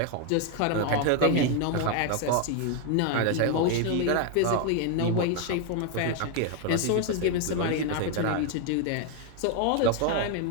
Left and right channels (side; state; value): both; different; correlation 0.01